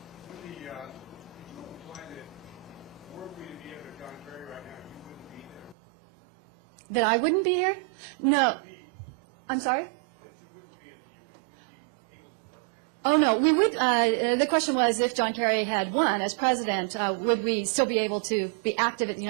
Wendy, you implied that were we to be able to John Kerry right now, you wouldn't be there. That I wouldn't be here? No. I'm sorry? That you wouldn't be at the UN, you wouldn't be able to work there. Oh, no, we would, the question was if John Kerry had won as president, would we still be able to be active at the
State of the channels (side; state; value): left; drops out; at 5.8 s